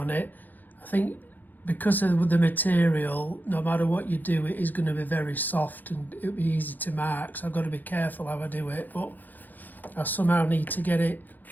it. I think because of the material, no matter what you do, it is going to be very soft and it'll be easy to mark, so I've got to be careful how I do it, but I somehow need to get it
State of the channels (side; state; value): right; late; 0.085 ms